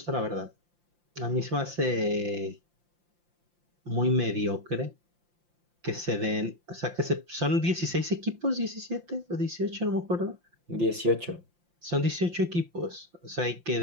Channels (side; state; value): left; late; 5.8 ms